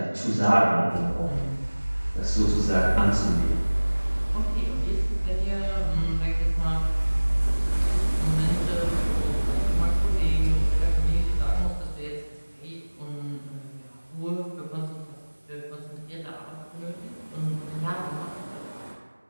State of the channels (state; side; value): inverted; both; correlation -1.00